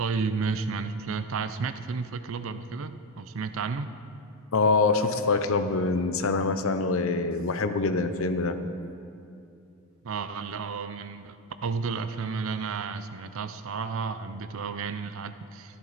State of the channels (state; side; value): normal; both; correlation 0.07